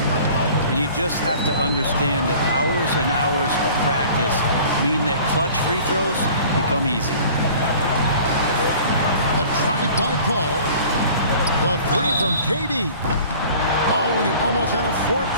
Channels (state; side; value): inverted; both; correlation -0.47